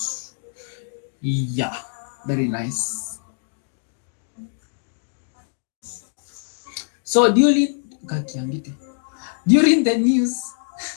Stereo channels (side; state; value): right; silent; digital silence